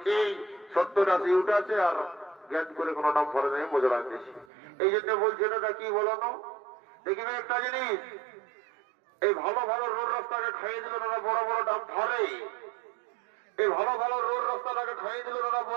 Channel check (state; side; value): drops out; left; at 4.5 s